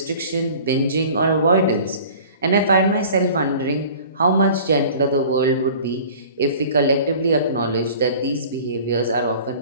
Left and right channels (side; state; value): both; inverted; correlation -0.45